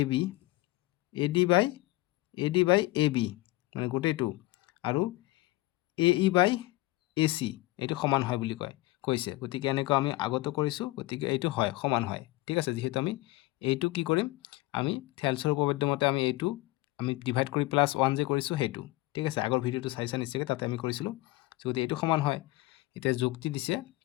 AB মানে গোটেইটো আৰু AE বাই AC এইটো সমান হয় বুলি কৈছে গতিকে এনেকুৱা আমি আগতে কৰিছো গতিকে এইটো হয় সমান হয় ঠিক আছে যেহেতু আমি এইটো কি কৰিম আমি থেলছৰ উপপাদ্য মতে আমি এইটো আমি ডিভাইড কৰি +1 যে কৰিছো হেতু ঠিক আছে আগৰ ভিডিওটো চাইছা নিশ্চয় তাতে আমি কৰিছিলো যদি এইটো সমান হয় এতিয়া যুক্তি দিছে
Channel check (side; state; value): right; quieter; 19.5 dB